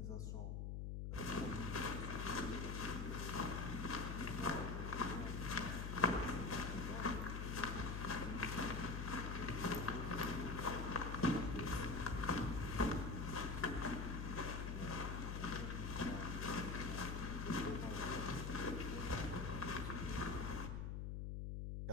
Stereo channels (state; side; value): noise; left; hum, 3 dB below the sound